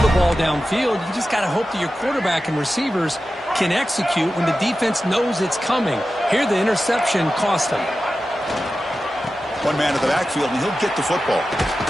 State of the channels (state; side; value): normal; both; correlation 0.93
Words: the ball downfield. You just got to hope that your quarterback and receivers can execute when the defense knows it's coming. Here, the interception cost him. One man at the backfield, and he'll get the football.